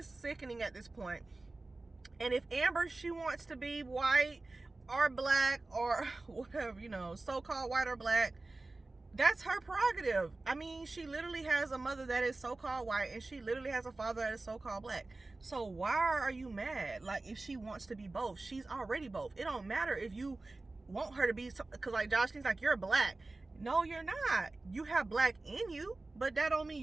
sickening at this point. And if Amber, she wants to be white or black or whatever, you know, so-called white or black, that's her prerogative. I mean, she literally has a mother that is so-called white, and she literally has a father that is so-called black. So why are you mad? Like, if she wants to be both, she's already both. It don't matter if you want her to be, because like Joshlyn's like, you're black. No, you're not. You have black in you, but that don't mean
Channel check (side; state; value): left; quieter; 3.2 dB